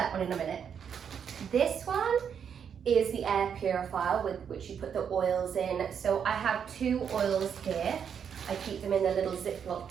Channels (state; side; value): quieter; left; 7.6 dB